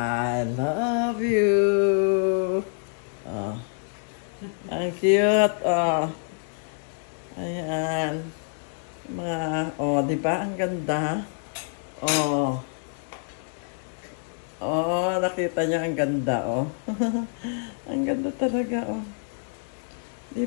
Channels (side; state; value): right; silent; digital silence